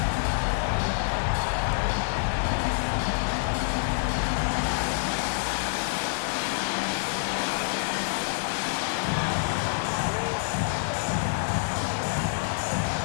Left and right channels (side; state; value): right; silent; 60 dB below the other